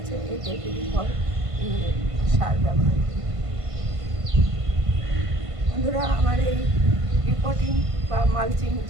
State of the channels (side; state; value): left; late; 1.5 ms